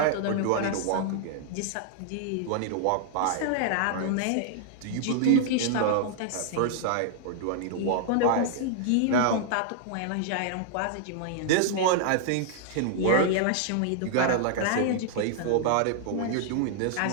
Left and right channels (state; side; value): different; both; correlation -0.01